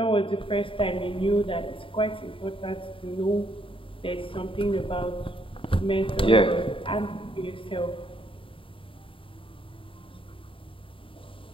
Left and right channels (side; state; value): right; late; 0.25 ms